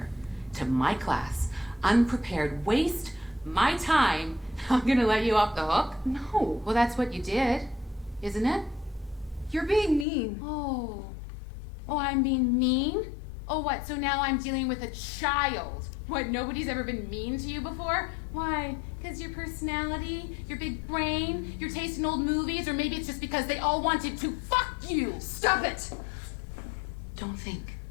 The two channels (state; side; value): drops out; right; at 10.1 s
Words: to my class unprepared, waste my time. I'm gonna let you off the hook? No. Well, that's what you did, isn't it? You're being mean. Oh, I'm being mean? Oh, what, so now I'm dealing with a child? What, nobody's ever been mean to you before? Why? Because your personality, your big brain, your taste in old movies, or maybe it's just because they all wanted to fuck you? Stop it! Don't think.